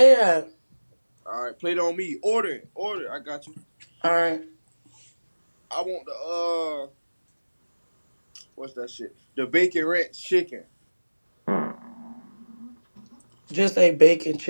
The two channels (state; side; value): inverted; both; correlation -1.00